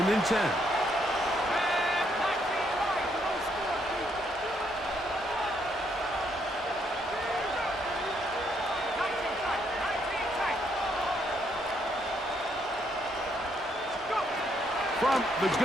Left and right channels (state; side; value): normal; both; correlation 0.73